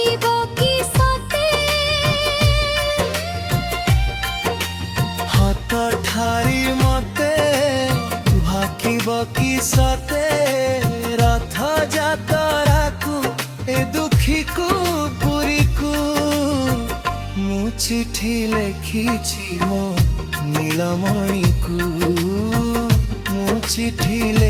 কি সতে হাত ঠারি মতে ভাকিব কি সতে রথ যাতরাকু এ দুঃখীকু পুরীকু মু চিঠি লেখিছি মো নীলমণিকু মু চিঠি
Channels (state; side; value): identical; both; correlation 1.00